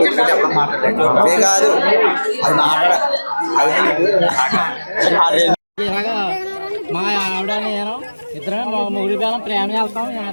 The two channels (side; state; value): both; inverted; correlation -1.00